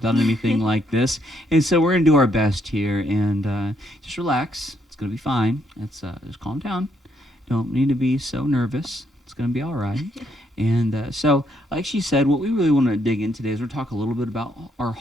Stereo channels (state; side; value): normal; both; correlation 0.73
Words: anything like this. And so we're going to do our best here and just relax. It's going to be fine. Just calm down. Don't need to be so nervous. It's going to be all right. And so, like she said, what we really want to dig in today is we're talk a little bit about our